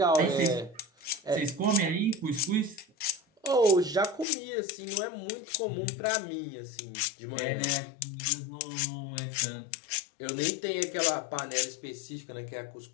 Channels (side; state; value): right; drops out; at 4.2 s